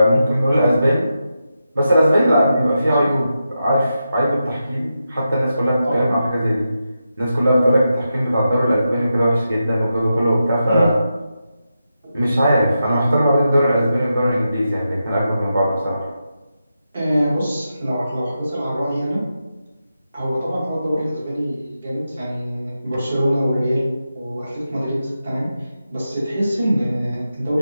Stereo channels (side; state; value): both; inverted; correlation -0.88